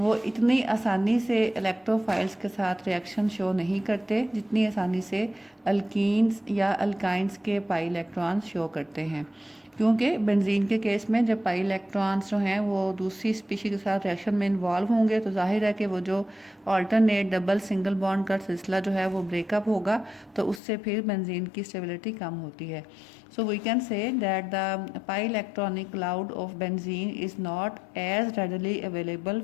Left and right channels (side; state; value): right; drops out; at 20.6 s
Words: इतनी आसानी से इलेक्ट्रोफाइल्स के साथ रिएक्शन शो नहीं करते जितनी आसानी से अल्कीन्स या अल्काइंस के पाई इलेक्ट्रॉन्स शो करते हैं। क्योंकि बेंजीन के केस में जब पाई इलेक्ट्रॉन्स जो हैं वो दूसरी स्पीशी के साथ रिएक्शन में इन्वॉल्व होंगे तो जाहिर है कि वो जो ऑल्टरनेट डबल सिंगल बॉन्ड का सिलसिला जो है वो ब्रेकअप होगा, तो उससे फिर बेंजीन की स्टेबिलिटी कम होती है। So we can say that the pi electronic cloud of benzene is not as readily available